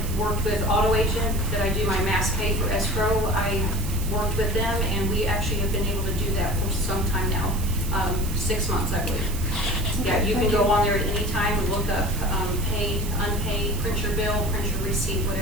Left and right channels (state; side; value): noise; right; hiss, 12 dB below the sound